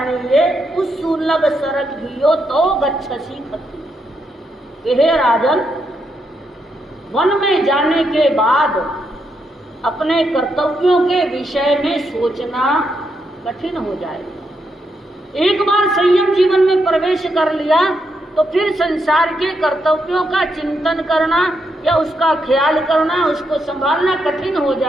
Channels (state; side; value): normal; both; correlation 0.80